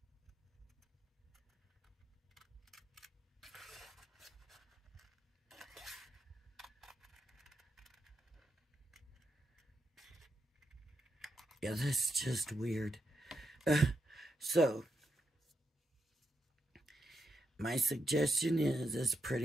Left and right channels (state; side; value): normal; both; correlation 0.83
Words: Yeah, that's just weird. So, my suggestion is, as